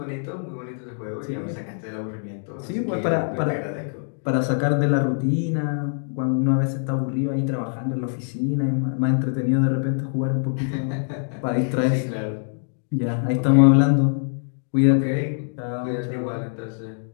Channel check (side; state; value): right; silent; digital silence